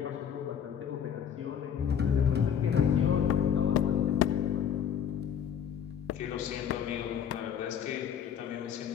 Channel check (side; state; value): right; quieter; 8.4 dB